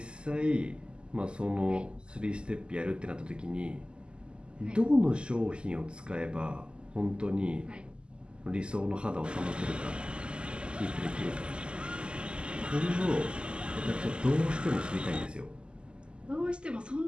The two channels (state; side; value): late; left; 0.050 ms